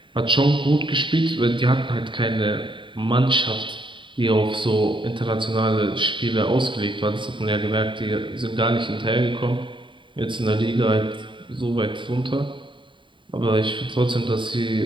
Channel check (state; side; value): late; left; 0.24 ms